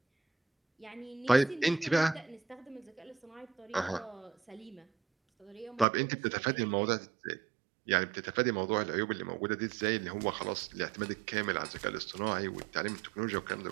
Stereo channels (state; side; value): drops out; left; at 5.9 s